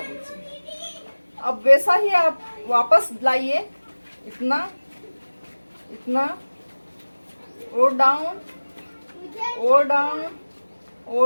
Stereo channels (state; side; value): inverted; both; correlation -1.00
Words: अब वैसा ही आप वापस लाइए, इतना, इतना, और डाउन, और डाउन,